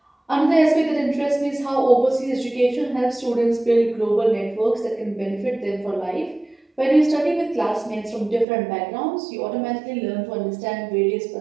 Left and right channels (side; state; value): left; drops out; at 8.5 s